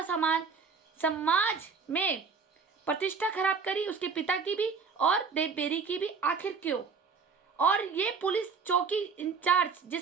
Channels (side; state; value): left; quieter; 5.3 dB